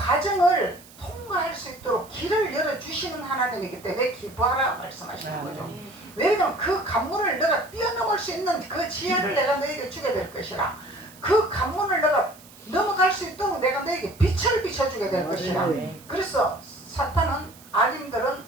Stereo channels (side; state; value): right; noise; hiss, 22 dB below the sound